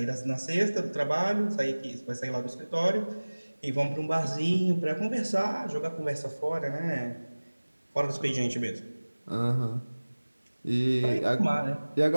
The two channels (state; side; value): inverted; both; correlation -1.00